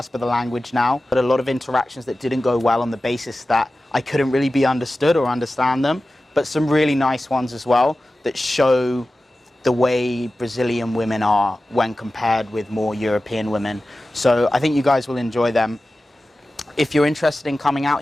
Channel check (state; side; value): normal; both; correlation 0.95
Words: of the language now. But a lot of interactions that didn't go well on the basis that I couldn't really be understood or understand them, but some really nice ones as well that show the way Brazilian women are when compared with more European women. So I think you guys will enjoy them. If you're interested in coming out